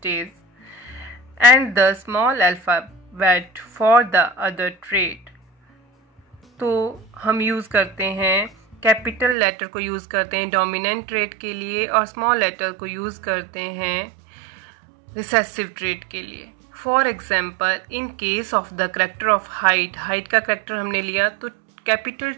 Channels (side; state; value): left; drops out; at 9.3 s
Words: and the small alphabet for the other trait. तो हम use करते हैं capital letter को use करते हैं dominant trait के लिए और स्मॉल लेटर को यूज़ करते हैं रिसेसिव ट्रेट के लिए. For example, in case of the character of height का करेक्टर हमने लिया तो capital